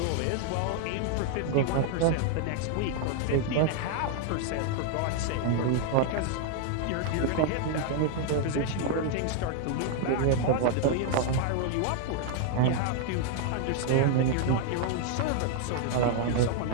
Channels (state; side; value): different; both; correlation 0.00